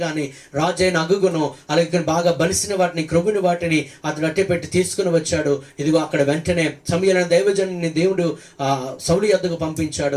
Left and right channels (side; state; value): both; identical; correlation 1.00